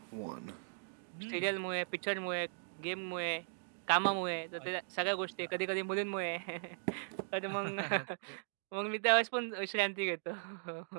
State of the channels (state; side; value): silent; left; digital silence